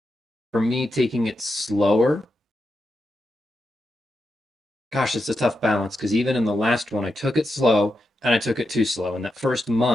for me, taking it slower, gosh, it's a tough balance because even in the last one, I took it slow and I took it too slow. In that first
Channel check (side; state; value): both; normal; correlation 0.87